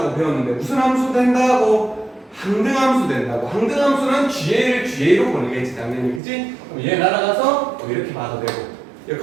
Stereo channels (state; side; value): drops out; left; at 6.2 s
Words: 배웠는데 무슨 함수 된다고? 항등함수 된다고. 항등함수는 GA를 GA로 보내겠지, 당연히, 그치? 그럼 얘 날아가서 이렇게 봐도 되고